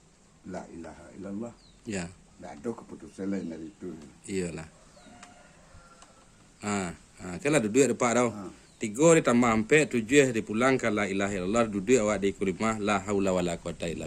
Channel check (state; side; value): identical; both; correlation 1.00